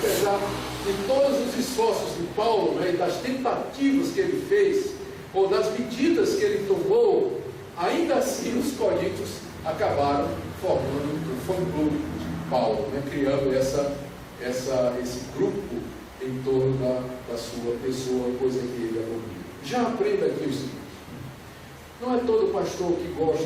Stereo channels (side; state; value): both; identical; correlation 1.00